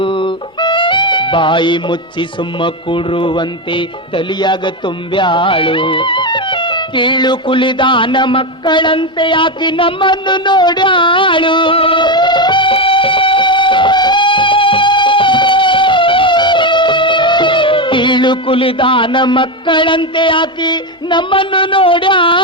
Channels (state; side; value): normal; both; correlation 0.11